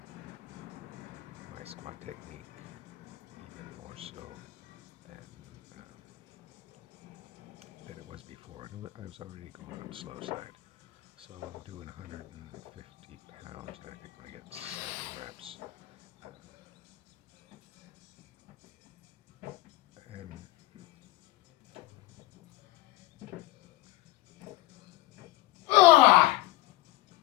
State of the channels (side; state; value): right; quieter; 17.3 dB